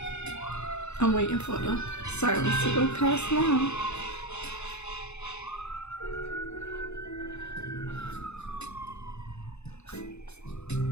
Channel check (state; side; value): late; right; 0.81 ms